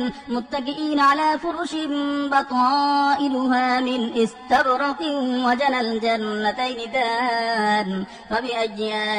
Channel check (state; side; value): identical; both; correlation 1.00